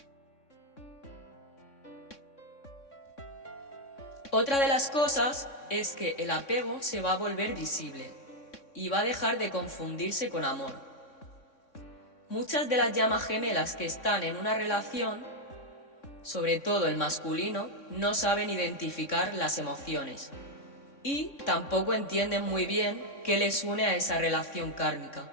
Otra de las cosas es que el apego se va a volver visible y va a dejar de confundirse con amor. Muchas de las llamas gemelas que están en una relación, sobre todo el masculino, no saben identificar las emociones y tampoco entienden muy bien qué les une a esa relación kármica.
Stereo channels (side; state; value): right; late; 3.6 ms